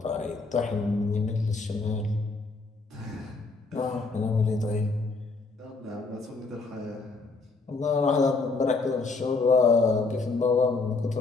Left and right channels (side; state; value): right; quieter; 3.9 dB